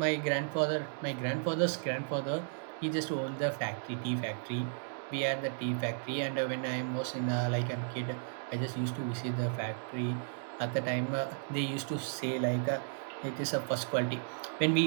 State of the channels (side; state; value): left; silent; digital silence